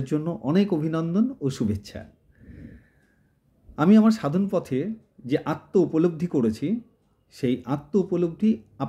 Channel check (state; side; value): identical; both; correlation 1.00